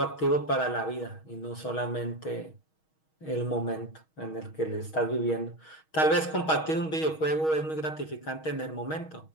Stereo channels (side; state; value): right; late; 6.3 ms